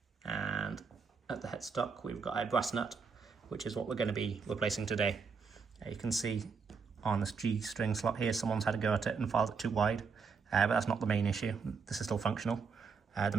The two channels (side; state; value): left; quieter; 5.4 dB